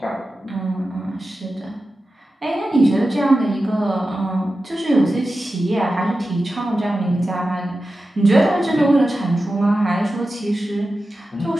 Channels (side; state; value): both; normal; correlation 0.93